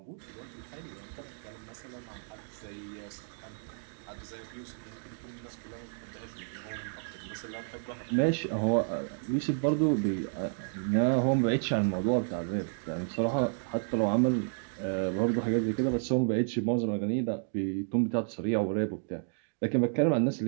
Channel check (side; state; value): left; silent; digital silence